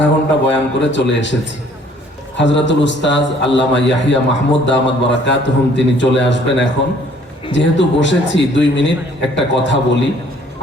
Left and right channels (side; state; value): both; normal; correlation 0.58